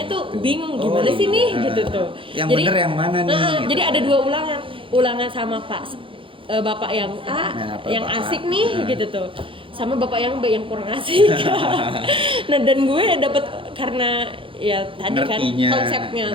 tuh gitu. bingung Oh, gimana sih iya. nih gitu tuh. Yang Jadi, bener yang mana nih, gitu. Jadi ada 2 ulangan. Ulangan sama Bapak yang A, Nah, yang Bapak A. asik nih gitu tuh. Sama Bapak yang B yang kurang asik. Nah, dan gue dapet karena ya tadi Ngertinya. kan konsepnya,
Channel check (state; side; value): late; left; 0.25 ms